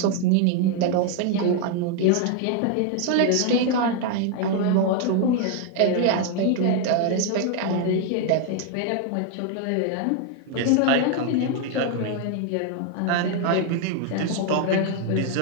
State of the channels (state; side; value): different; both; correlation 0.00